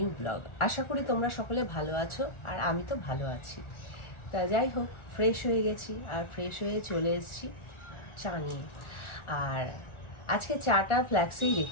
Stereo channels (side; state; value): right; late; 1.4 ms